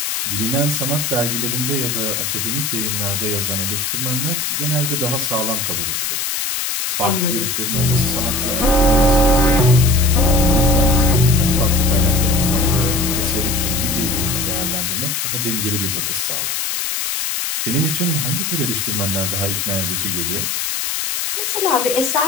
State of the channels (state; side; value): noise; left; hiss, 1 dB below the sound